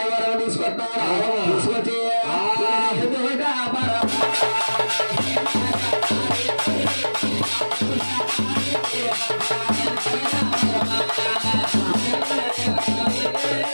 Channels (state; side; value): inverted; both; correlation -1.00